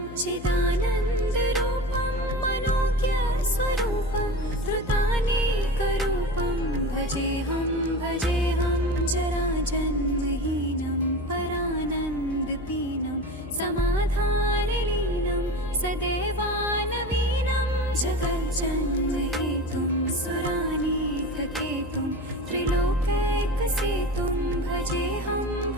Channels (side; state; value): left; noise; hum, 14 dB below the sound